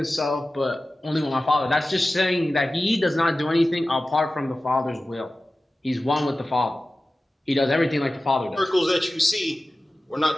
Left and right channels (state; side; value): normal; both; correlation 0.96